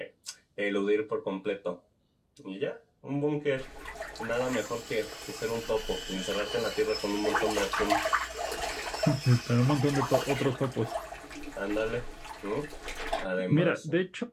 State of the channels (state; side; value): identical; both; correlation 1.00